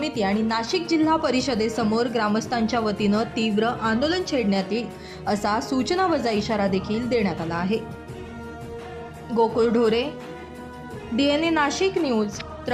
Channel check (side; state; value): both; identical; correlation 1.00